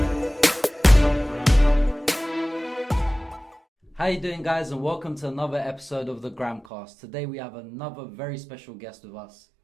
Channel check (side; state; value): left; drops out; at 6.7 s